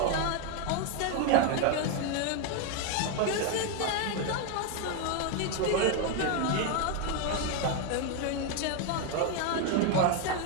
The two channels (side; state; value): both; different; correlation 0.01